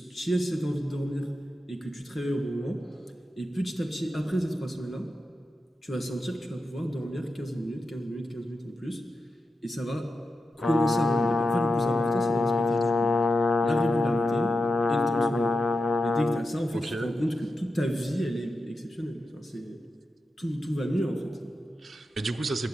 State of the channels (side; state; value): both; normal; correlation 0.89